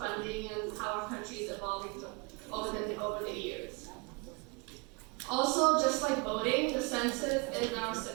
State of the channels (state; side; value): quieter; left; 29.4 dB